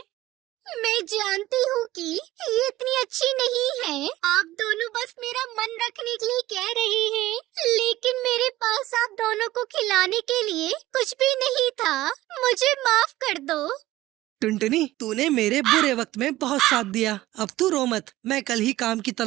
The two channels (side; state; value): left; quieter; 16.4 dB